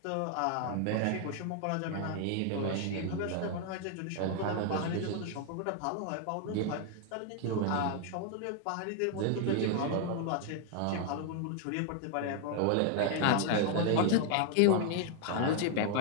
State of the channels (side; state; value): both; different; correlation 0.00